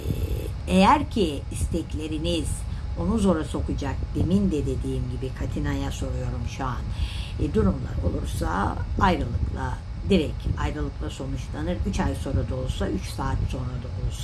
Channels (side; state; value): both; identical; correlation 1.00